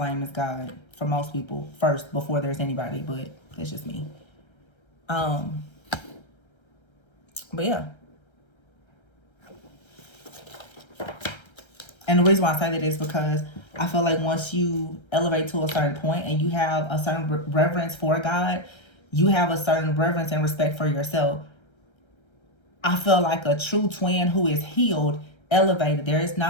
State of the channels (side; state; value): right; late; 1.3 ms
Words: is God for most people first, before there's anybody, but it's just me. But yeah. And the reason why I say that is because I feel like once you elevate to a certain point and you have a certain reverence for God, you have a certain reverence and respect for yourself. I feel like a true twin who is healed, elevated. There is